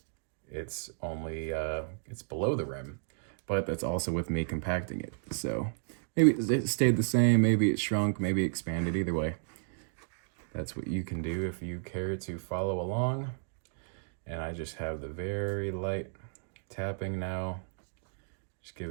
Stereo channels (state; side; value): silent; left; digital silence